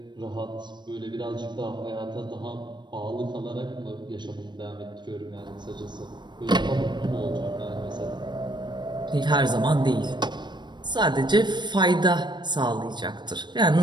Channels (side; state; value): left; late; 0.22 ms